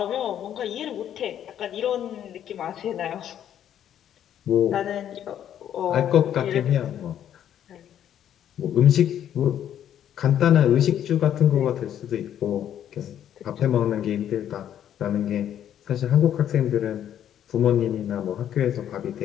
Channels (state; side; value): quieter; right; 10.3 dB